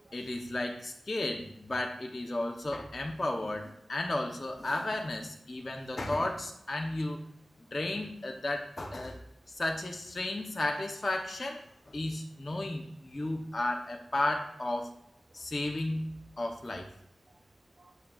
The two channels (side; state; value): both; normal; correlation 0.96